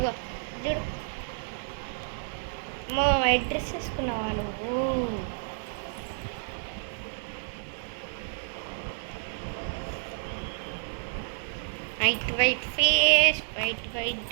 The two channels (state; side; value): silent; left; digital silence